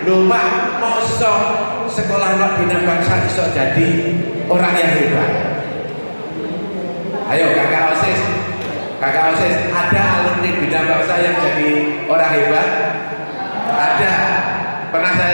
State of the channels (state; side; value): inverted; both; correlation -1.00